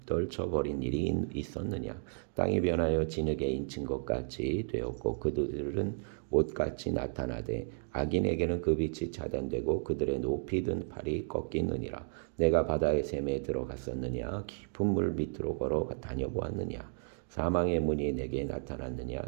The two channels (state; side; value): silent; left; digital silence